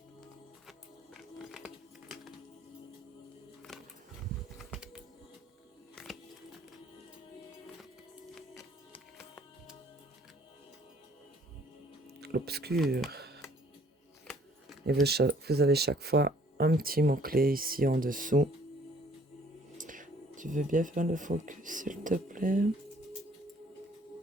L'obscur. Et vous avez chaque fois un petit mot-clé ici en dessous. Tu veux bien faire le focus, s'il te plaît?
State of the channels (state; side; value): normal; both; correlation 0.59